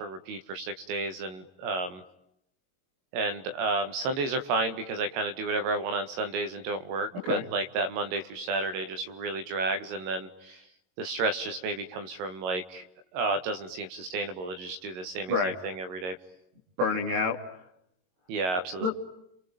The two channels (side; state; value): left; late; 22 ms